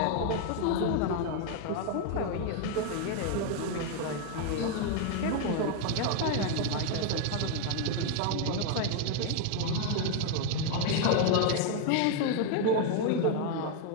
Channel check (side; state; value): both; different; correlation 0.01